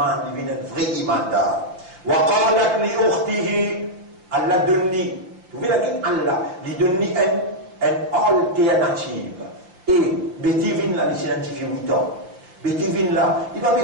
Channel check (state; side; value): late; left; 5.7 ms